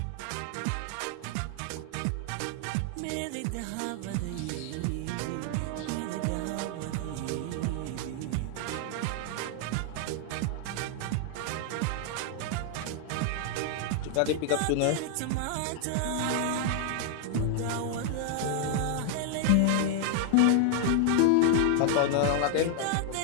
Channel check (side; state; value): both; different; correlation 0.00